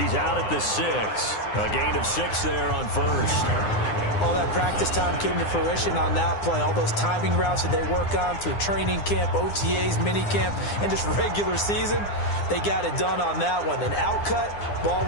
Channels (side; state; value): right; late; 9.8 ms